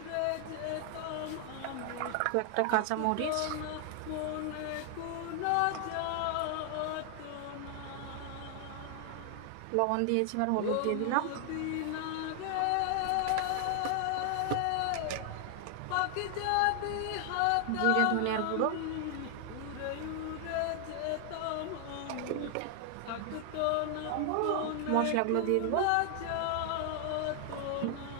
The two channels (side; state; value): both; different; correlation 0.00